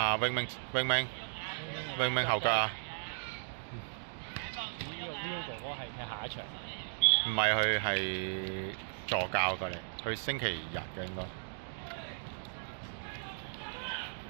永明後腳啊！呢個 Will 哥哥係踢下一場。唔係佢係助教過嚟，佢星期日嘅應該。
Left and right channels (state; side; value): silent; left; digital silence